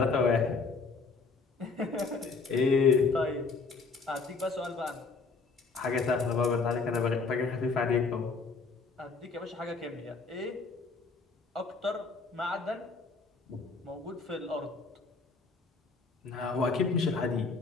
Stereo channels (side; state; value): right; quieter; 4.3 dB